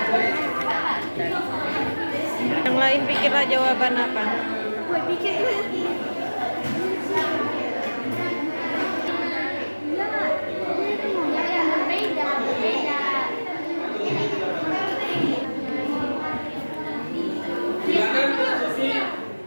Yang lain pikirlah jawaban apa? Gue pikir Silakan diskusi.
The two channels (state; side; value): inverted; both; correlation -1.00